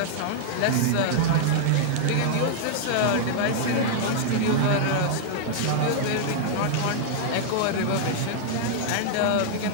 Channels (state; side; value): different; both; correlation -0.01